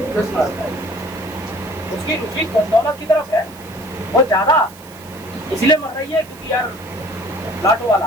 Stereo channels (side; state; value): right; noise; hiss, 21 dB below the sound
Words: उसकी रुचि दौलत की तरफ है, वो ज्यादा इसलिए मर रही है क्योंकि यार लाटो वाला